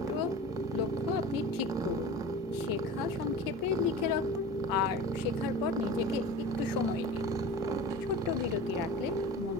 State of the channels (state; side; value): normal; both; correlation 0.35